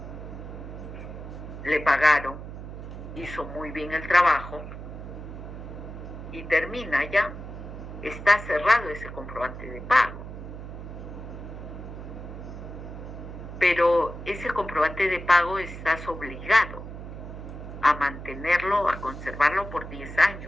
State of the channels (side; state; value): right; noise; hum, 10 dB below the sound